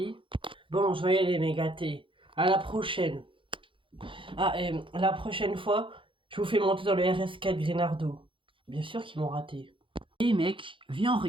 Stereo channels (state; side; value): late; left; 0.25 ms